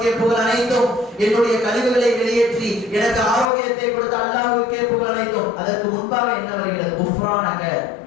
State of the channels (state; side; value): drops out; right; at 3.5 s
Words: புகழ் அனைத்தும், என்னுடைய கழிவுகளை வெளியேற்றி எனக்கு ஆரோக்கியத்தை கொடுத்த அல்லாஹ்வுக்கே புகழ் அனைத்தும். அதற்கு முன்பாக என்ன வருகிறது? குஃப்ரானக,